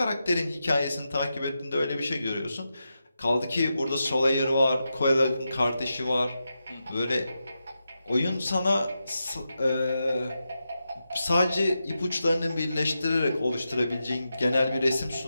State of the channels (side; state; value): both; inverted; correlation -0.88